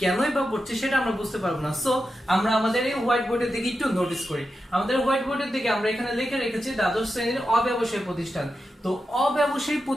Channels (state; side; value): normal; both; correlation 0.89